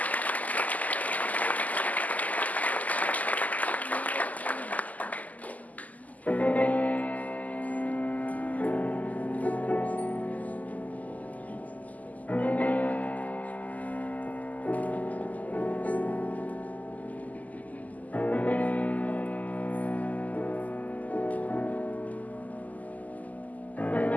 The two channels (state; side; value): late; right; 0.078 ms